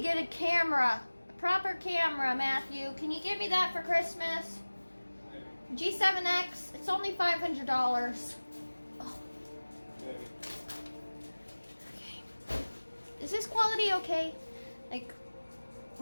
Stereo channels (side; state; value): both; inverted; correlation -1.00